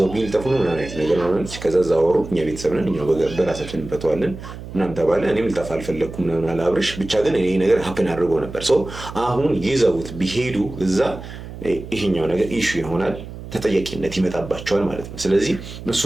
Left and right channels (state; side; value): noise; right; hum, 12 dB below the sound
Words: ቢልጠፉ ነው ምናምን አይነት ነገር ማለች። ከዛ ዛወሩ እኛ ቤተሰብ ነን እኛው በራሳችን እንፈተዋለን ምናምን ተባለ። እኔም ልጠፋ አልፈለግኩም ምናምን አለ አብርሽ። ብቻ ግን ይሄ ነገር ሀፕን አድርጎ ነበር። አሁን ይዘውት ቢሄዱ እዛ ይሄኛው ነገር ኢሹ ይሆናል፣ ተጠያቂነት ይመጣባቸዋል ማለት ነው። ስለዚህ